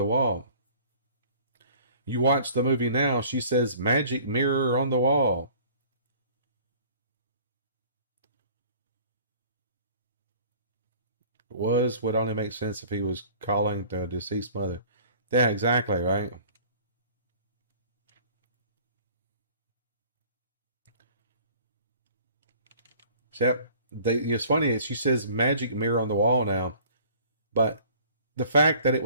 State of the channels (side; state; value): both; inverted; correlation -0.50